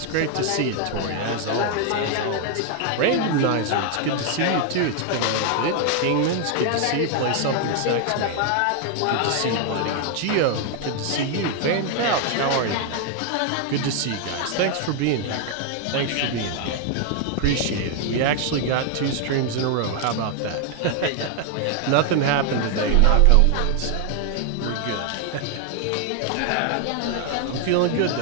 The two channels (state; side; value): different; both; correlation 0.00